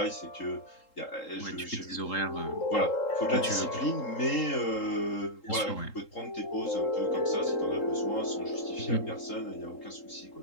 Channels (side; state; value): right; late; 3.8 ms